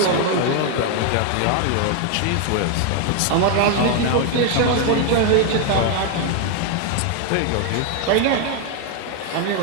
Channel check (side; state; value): both; different; correlation 0.01